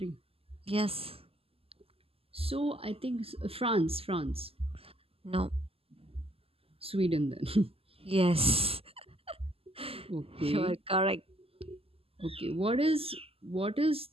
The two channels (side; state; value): left; late; 0.28 ms